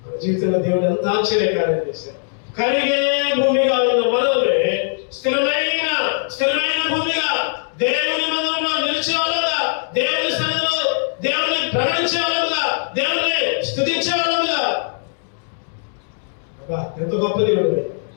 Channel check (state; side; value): silent; right; digital silence